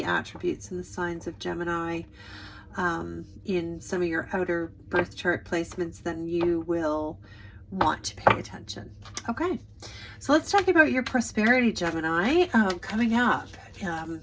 attributes and the signs of Gemini in some of your outer birth chart placements, then you will want to pay attention. Okay, so let's talk about your prosperity, Gemini, coming up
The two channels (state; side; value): identical; both; correlation 1.00